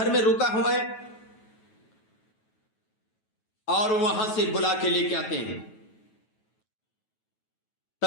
में रुका हुआ है, और वहां से बुला के लेके आते हैं।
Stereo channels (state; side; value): late; right; 9.2 ms